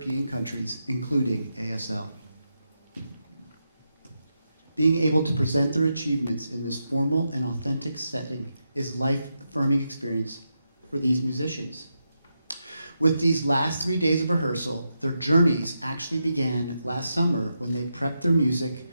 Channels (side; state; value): both; inverted; correlation -0.85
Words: countries, including ASL. Being able to present their achievements in this formal and authentic setting is a life-affirming experience for these musicians. With these last 3 days of rehearsal, their journeys actually began last summer when they prepped their music